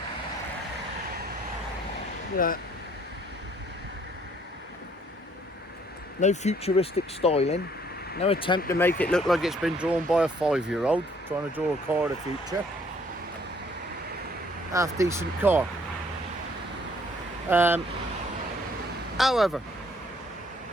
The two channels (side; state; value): both; normal; correlation 0.63